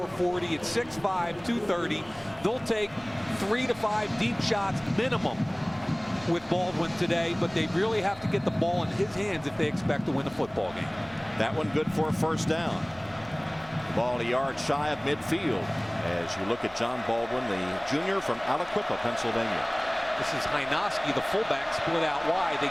40 at 6'5", 230. They'll take 3 to 5 deep shots minimum with Baldwin today, but they really have to get the ball in his hands if they expect to win the football game. That one good for a first down. The ball a yard shy of midfield as you look at John Baldwin, the junior from Aliquippa, Pennsylvania. This is Hynoski, the fullback, split out wide. They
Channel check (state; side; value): noise; left; hum, 25 dB below the sound